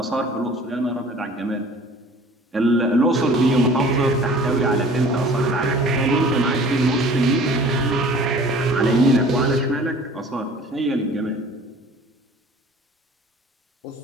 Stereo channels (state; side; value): normal; both; correlation 0.48